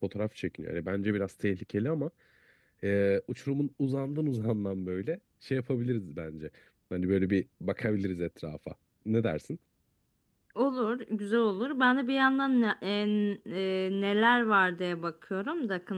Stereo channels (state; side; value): identical; both; correlation 1.00